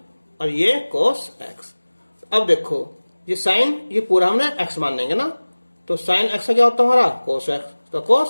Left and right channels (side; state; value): both; inverted; correlation -1.00